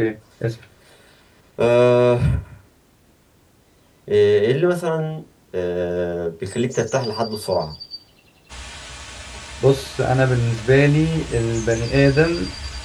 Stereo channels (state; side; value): identical; both; correlation 1.00